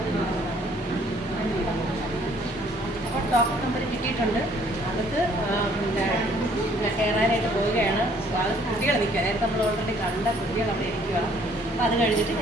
ഡോക്ടർ നമ്പർ കിട്ടിയിട്ടുണ്ട്. അകത്ത് കയറാനായിട്ട് പോവുകയാണ്. അത് കുട്ടികൾ നിൽക്കുക. നേരത്തെ നമ്മൾ ഓൾറെഡി കണ്ട കുട്ടികൾ അവിടെ ഇരിക്കുക. അപ്പോൾ അത് കഴിഞ്ഞിട്ട്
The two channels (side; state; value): both; normal; correlation 0.61